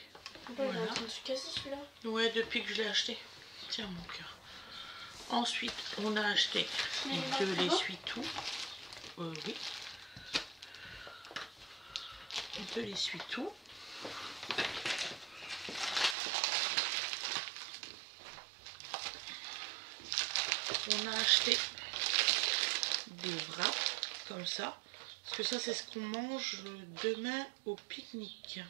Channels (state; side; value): drops out; left; at 16.2 s